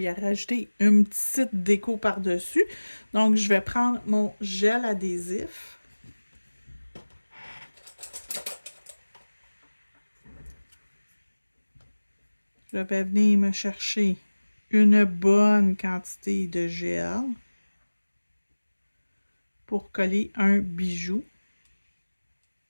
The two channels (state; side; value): inverted; both; correlation -1.00